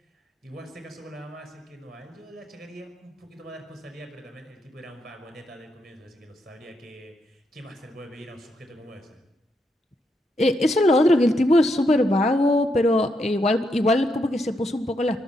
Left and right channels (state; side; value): normal; both; correlation 0.80